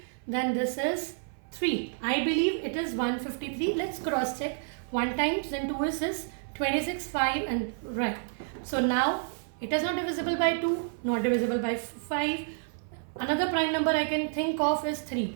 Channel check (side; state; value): left; silent; 55 dB below the other